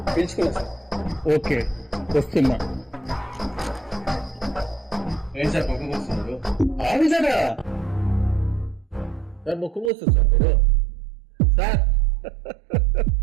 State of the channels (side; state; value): left; drops out; at 9.9 s